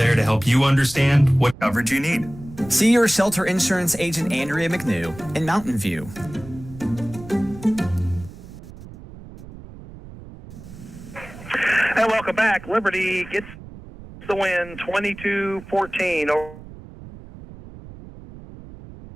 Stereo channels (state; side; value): noise; right; rumble, 16 dB below the sound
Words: to help you understand what coverage you need. See your Shelter Insurance agent Andrea McNew in Mountain View. And welcome back. Liberty gets the win 22-14 over